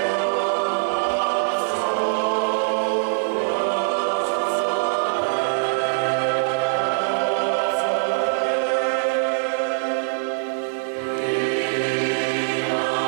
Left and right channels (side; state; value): left; silent; 64 dB below the other